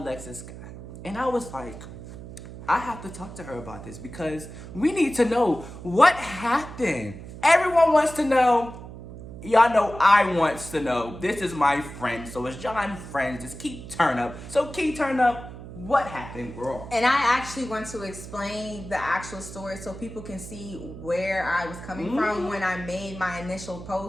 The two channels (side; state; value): right; noise; hum, 13 dB below the sound